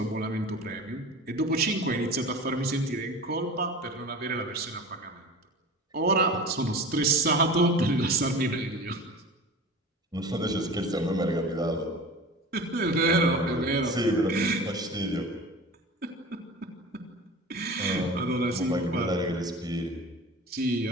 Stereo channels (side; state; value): both; normal; correlation 0.36